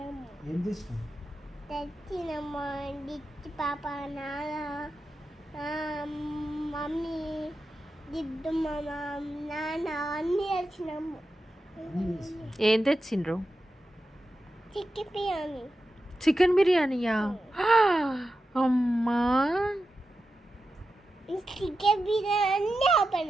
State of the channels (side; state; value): both; normal; correlation 0.90